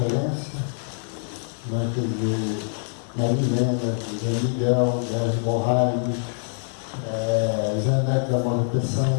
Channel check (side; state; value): right; silent; digital silence